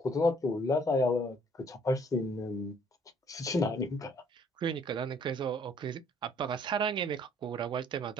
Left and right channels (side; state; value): both; normal; correlation 0.60